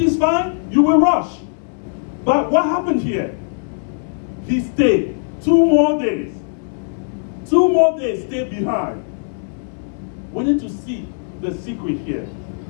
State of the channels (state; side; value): silent; right; 66 dB below the other